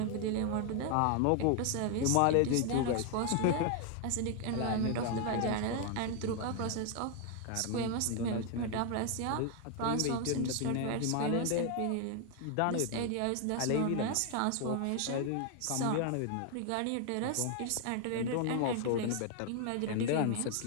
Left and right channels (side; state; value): both; different; correlation 0.00